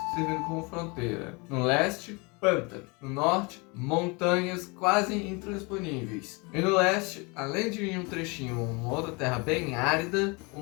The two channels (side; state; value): right; quieter; 28.8 dB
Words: servindo como fronteira. No leste, pântano. No norte, montanhas quase intransponíveis. E no leste, além de um trechinho, uma outra terra bem árida, o